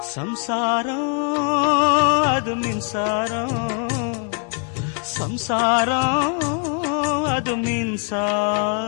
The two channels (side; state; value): right; quieter; 39.5 dB